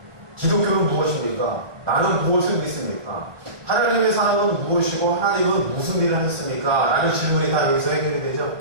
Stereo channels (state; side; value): late; left; 1.2 ms